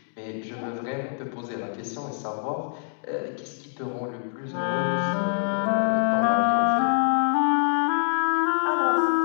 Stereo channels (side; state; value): right; silent; digital silence